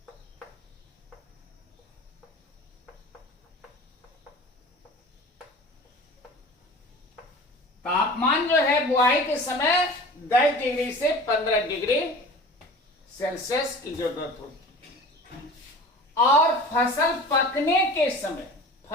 तापमान जो है बुआई के समय 10 डिग्री से 15 डिग्री सेल्सियस की जरूरत होती है। और फसल पकने के समय,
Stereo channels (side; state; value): both; normal; correlation 0.39